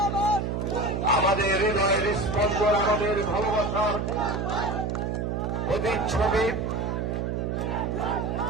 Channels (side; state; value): right; noise; hum, 1 dB below the sound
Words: আমাদের হৃদয়ের স্পন্দন, আমাদের ভালোবাসার প্রতিচ্ছবি,